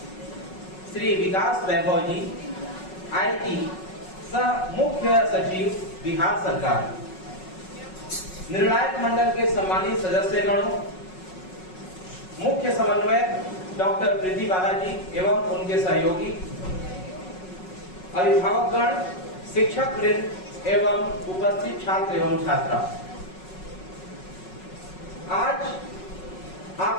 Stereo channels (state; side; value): late; right; 5.4 ms